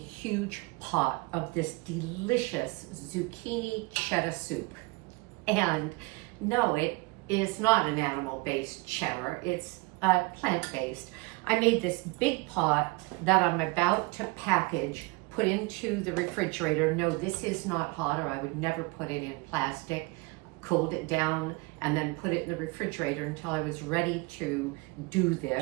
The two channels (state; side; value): quieter; left; 25.9 dB